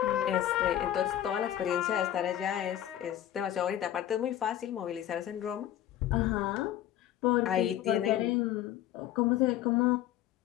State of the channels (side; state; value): right; quieter; 12.1 dB